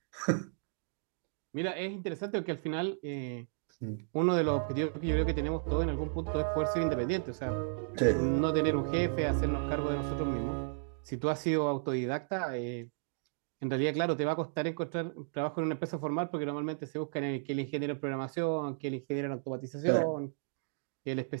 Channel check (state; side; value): silent; left; digital silence